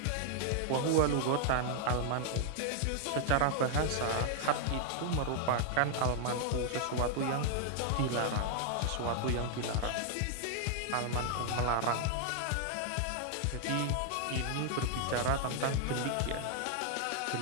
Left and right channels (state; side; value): different; both; correlation 0.00